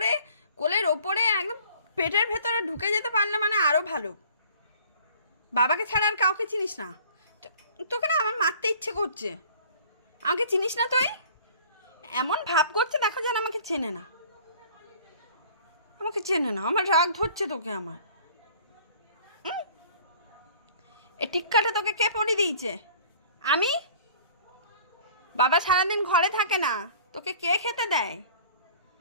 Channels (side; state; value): both; inverted; correlation -0.50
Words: কোলের ওপরে একদম পেটের ভেতরে ঢুকে যেতে পারলে মানে আরও ভালো। বাবাকে ছাড়া আর কাউকে চিনিস না। তোকে না আমার মারতে ইচ্ছে করছে। আমাকে চিনিস না তুই? এমন ভাব করছে দেখো যেন আমাকে চেনে না, আমাকে চেনে না। আমার রাগ ধরছে তোকে আমার। এ টিক্কাটা তোকে কে পরিয়ে দিয়েছে? আমি? বাবা সারাদিন ঘরে থাকে না, তোকে কে খেতে দেয়?